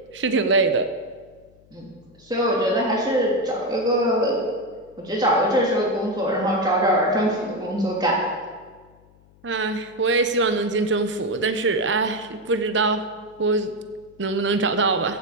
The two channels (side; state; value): left; noise; hum, 28 dB below the sound